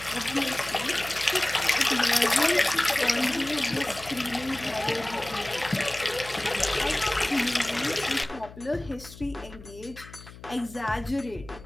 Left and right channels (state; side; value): noise; left; hum, 17 dB below the sound